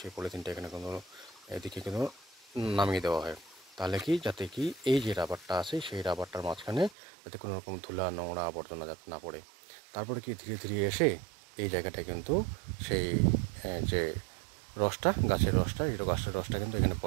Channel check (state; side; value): drops out; left; at 7.0 s